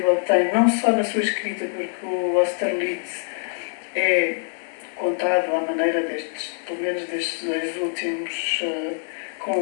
tem, não só na sua escrita, porque o Austerlitz é contado à maneira pelo menos destes dois últimos,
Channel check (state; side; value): silent; right; 63 dB below the other